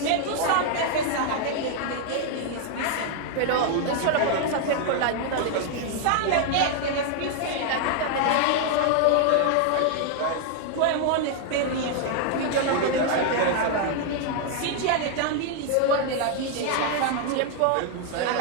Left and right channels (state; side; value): different; both; correlation 0.00